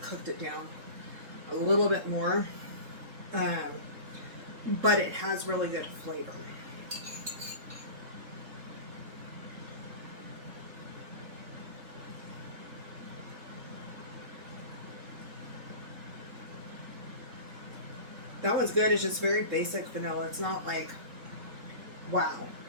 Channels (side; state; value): left; late; 3.7 ms